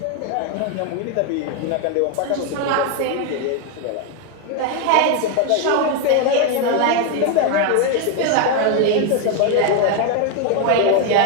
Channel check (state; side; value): different; both; correlation 0.01